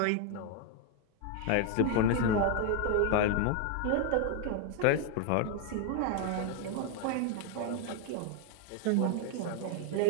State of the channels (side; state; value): both; different; correlation 0.00